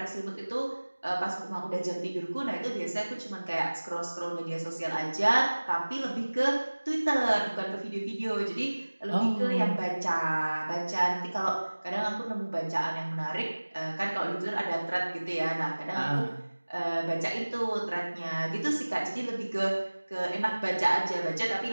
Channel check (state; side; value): inverted; both; correlation -1.00